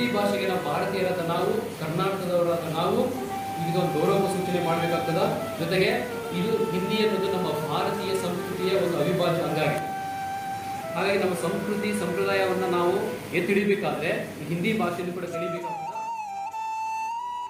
ಭಾಷೆಗೆ ನಾವು ಭಾರತೀಯರಾದ ನಾವು, ಕರ್ನಾಟಕದವರಾದ ನಾವು ಇದೊಂದು ಗೌರವ ಸೂಚನೆ ಮಾಡಬೇಕಾಗ್ತದ. ಜೊತೆಗೆ ಇದು ಹಿಂದಿ ಅನ್ನೋದು ನಮ್ಮ ಭಾರತೀಯ ಸಂಸ್ಕೃತಿಯ ಒಂದು ಅವಿಭಾಜ್ಯ ಅಂಗ ಆಗಿದೆ. ಹಾಗಾಗಿ ನಮ್ಮ ಸಂಸ್ಕೃತಿ ಸಂಪ್ರದಾಯವನ್ನು ನಾವು ಎತ್ತಿ ಹಿಡಿಬೇಕಾದ್ರೆ ಹಿಂದಿ ಭಾಷೆಯನ್ನು ಕೂಡ ಕಲಿಬೇಕಾಗ್ತದೆ.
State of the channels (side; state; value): both; identical; correlation 1.00